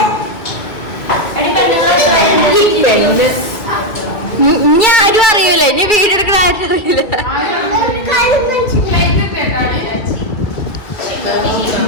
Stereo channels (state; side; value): late; right; 2.2 ms